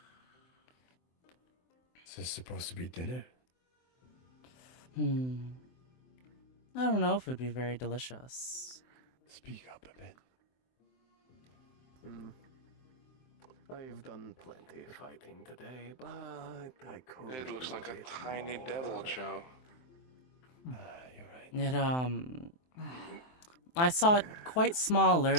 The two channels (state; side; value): late; right; 23 ms